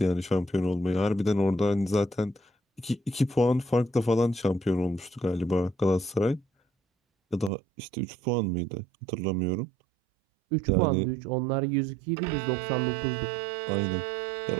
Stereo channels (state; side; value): drops out; left; at 7.5 s